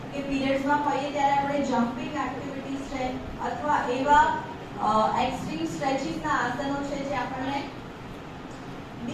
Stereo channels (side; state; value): both; identical; correlation 1.00